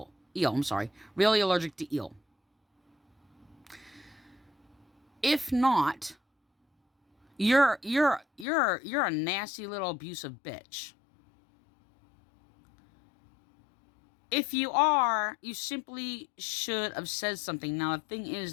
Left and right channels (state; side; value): drops out; right; at 8.5 s